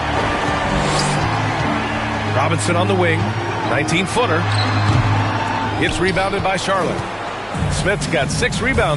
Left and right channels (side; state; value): both; identical; correlation 1.00